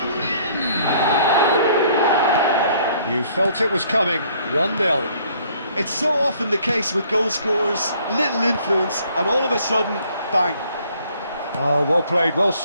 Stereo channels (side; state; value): both; inverted; correlation -0.61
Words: Son. You felt it was coming, 1-0. It's so often the case with goal scorers, little influence, and all of a sudden, bang. Oh, well played, well